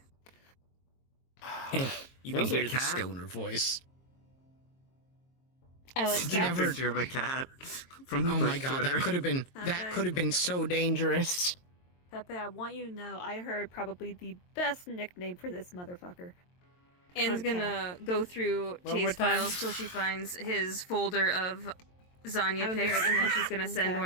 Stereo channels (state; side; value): late; right; 22 ms